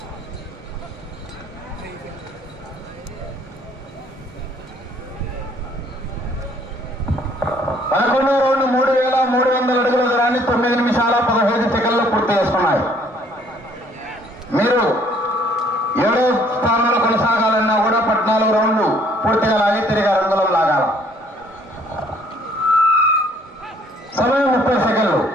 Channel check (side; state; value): both; normal; correlation 0.61